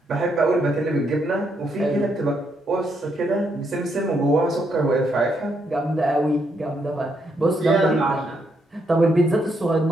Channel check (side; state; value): both; normal; correlation 0.77